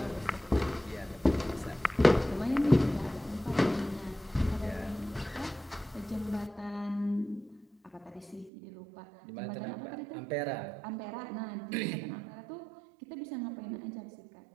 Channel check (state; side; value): drops out; left; at 8.5 s